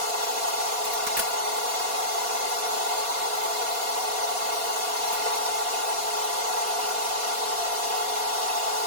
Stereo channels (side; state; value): left; late; 4.2 ms